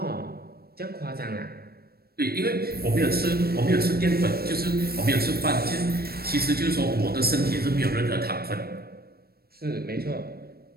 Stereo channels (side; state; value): left; late; 0.45 ms